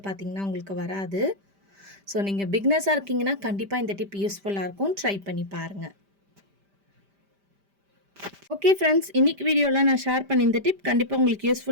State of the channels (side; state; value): left; late; 5.0 ms